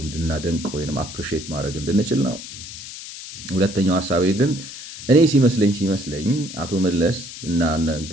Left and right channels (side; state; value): left; noise; hiss, 12 dB below the sound